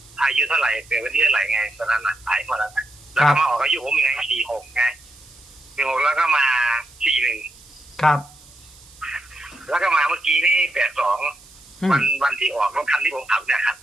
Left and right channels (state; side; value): noise; right; hiss, 24 dB below the sound